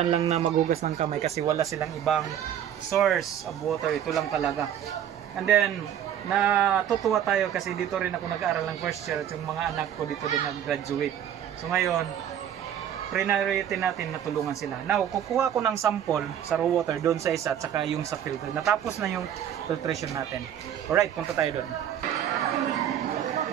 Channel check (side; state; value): left; quieter; 9.9 dB